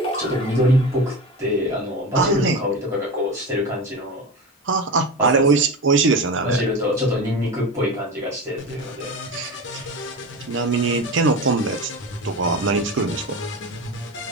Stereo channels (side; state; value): both; normal; correlation 0.26